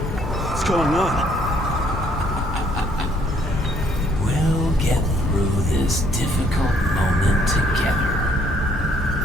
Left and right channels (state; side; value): normal; both; correlation 0.65